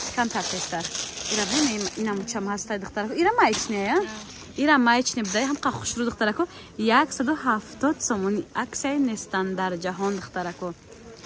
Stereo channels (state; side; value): identical; both; correlation 1.00